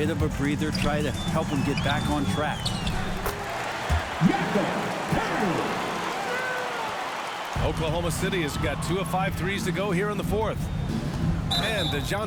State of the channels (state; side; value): identical; both; correlation 1.00